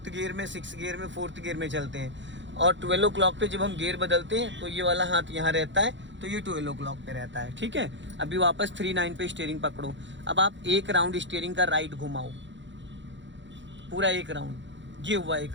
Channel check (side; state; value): left; late; 0.54 ms